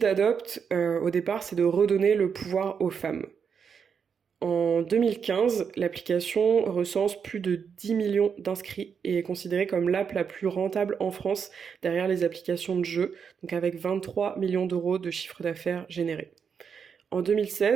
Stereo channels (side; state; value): left; quieter; 6.6 dB